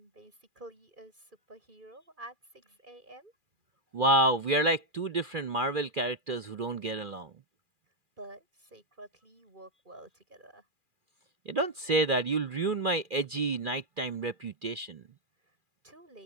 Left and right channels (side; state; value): left; late; 2.4 ms